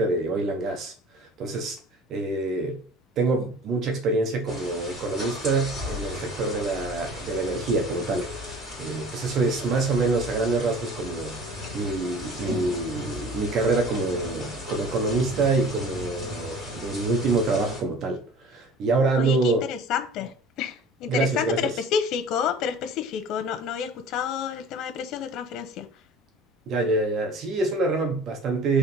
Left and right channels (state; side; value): normal; both; correlation 0.43